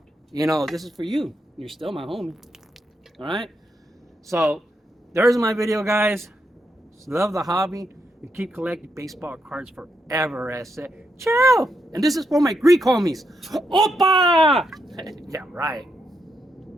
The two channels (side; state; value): both; normal; correlation 0.81